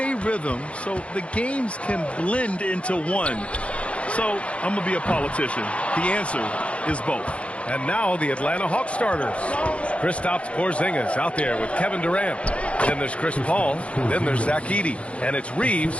rhythm, so the games can blend into one. So I'm going to be a politician. The answer is both. And now the Atlanta Hawks starters. Kristaps Porzingis out there with Kevin Durant. Then there's Chris Paul. Then there's Zach Edey. And it's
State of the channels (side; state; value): right; late; 0.061 ms